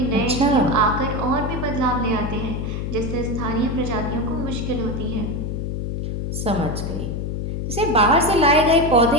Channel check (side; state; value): left; noise; hum, 3 dB below the sound